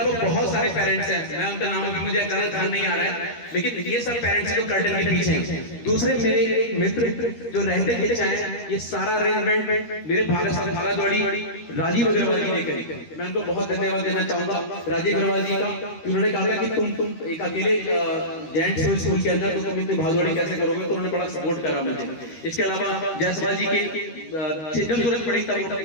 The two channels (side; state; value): right; late; 13 ms